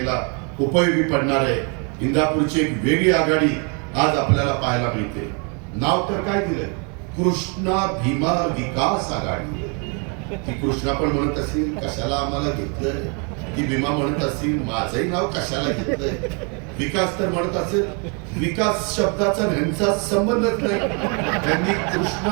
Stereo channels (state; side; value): quieter; left; 36.1 dB